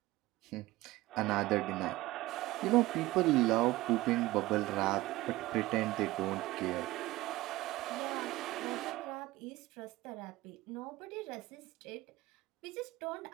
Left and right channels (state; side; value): quieter; left; 18.4 dB